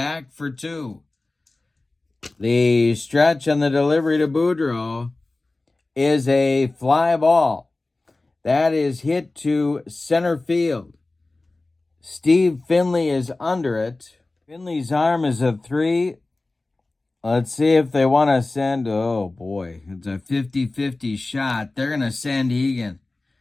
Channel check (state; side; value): quieter; right; 3.1 dB